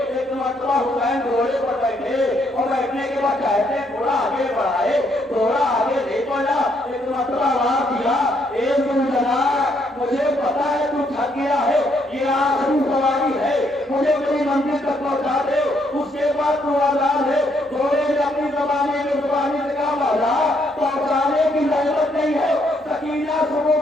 مرتبہ حسین گھوڑے پر بیٹھے اور بیٹھنے کے بعد کہتے ہیں تھوڑا آگے بڑھائے، تھوڑا آگے نہیں بڑھا. ایک مرتبہ آواز دیا، اے زلجنا مجھے پتا ہے تو تھک گیا ہے، یہ آخری سواری ہے، مجھے میری منزل تک پہنچا دے، اس کے بعد تو آزاد ہے. گھوڑے نے اپنی زبانی سے کہا مولا پہنچانے کی ضرورت نہیں ہے، سکینہ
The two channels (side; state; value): both; normal; correlation 0.72